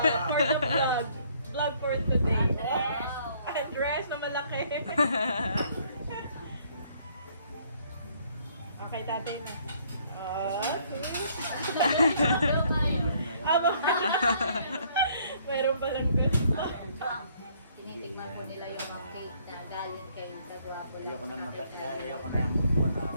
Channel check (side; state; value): both; inverted; correlation -0.64